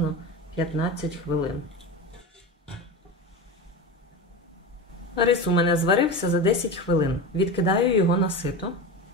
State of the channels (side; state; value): both; normal; correlation 0.25